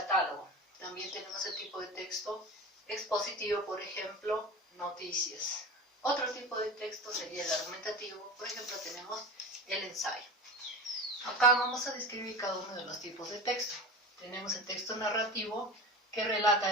También tenemos el tipo de texto expositivo, por ejemplo, noticias. Otro tipo de texto sería el argumentativo, por ejemplo, tenemos el ensayo. Acá vamos a describir cada uno de los tipos de texto. Tenemos el texto narrativo, que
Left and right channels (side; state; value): both; normal; correlation 0.30